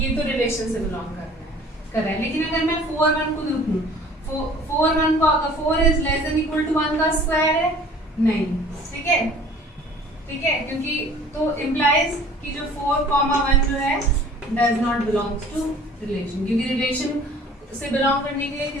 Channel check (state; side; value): normal; both; correlation 0.50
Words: तो रिलेशन से बिलोंग कर रहा है। लेकिन अगर मैं 4 1 को देखूं, 4 1 को अगर 4 is less than equal to 1 का स्क्वायर है, नहीं। ठीक है, ठीक है, क्योंकि तो इम्प्लाइज कि जो 4 1 जो है does not belongs to relation, क्योंकि रिलेशन से बिलोंग करने के लिए